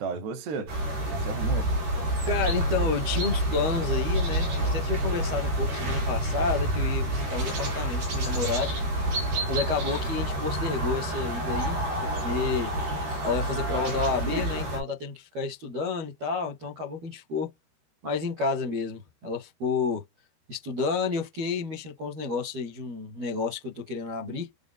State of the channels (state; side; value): late; left; 13 ms